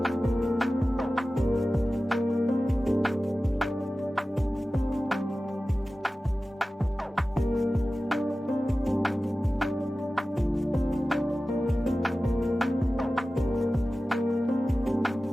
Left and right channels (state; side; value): normal; both; correlation 0.96